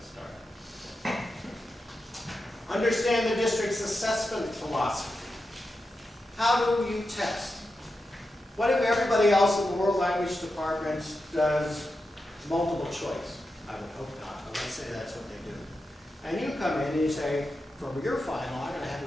start. Understand the district's assessment philosophy. How do you test? What if everybody else in the World Language Department does multiple choice? I would hope not, but let's say that's what they do. And you come in and you say, for your final, I'm going to have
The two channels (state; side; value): normal; both; correlation 0.89